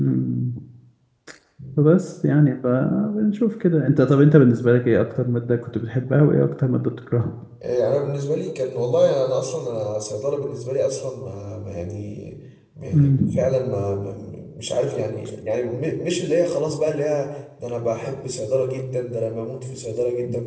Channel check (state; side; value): identical; both; correlation 1.00